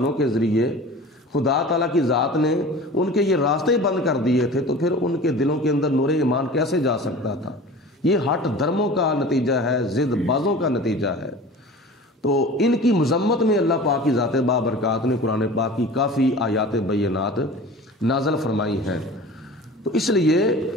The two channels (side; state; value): both; normal; correlation 0.39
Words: کے ذریعے خدا تعالیٰ کی ذات نے ان کے یہ راستے ہی بند کر دیے تھے تو پھر ان کے دلوں کے اندر نور ایمان کیسے جا سکتا تھا؟ یہ ہٹ دھرموں کا نتیجہ ہے، ضد بازوں کا نتیجہ ہے۔ تو ان کی مذمت میں اللہ پاک کی ذات بابرکات نے قرآن پاک کی کافی آیات بینات نازل فرمائی ہیں۔ تو اس لیے